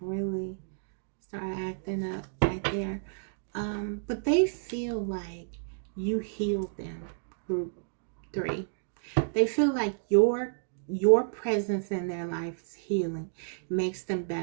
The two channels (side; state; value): left; silent; digital silence